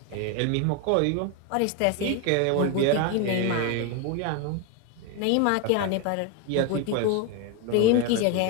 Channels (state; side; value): different; both; correlation 0.02